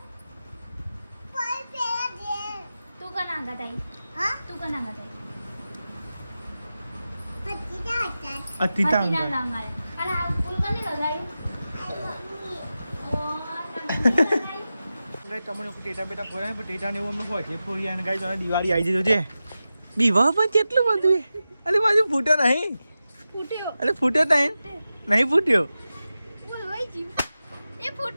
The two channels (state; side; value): inverted; both; correlation -0.93